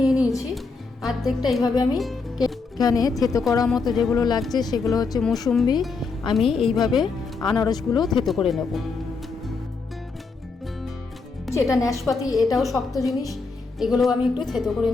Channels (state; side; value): quieter; right; 4.4 dB